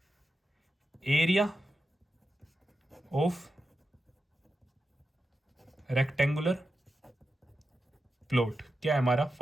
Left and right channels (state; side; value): normal; both; correlation 0.90